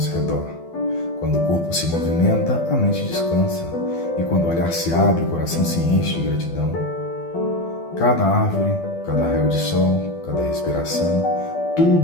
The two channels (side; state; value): right; late; 12 ms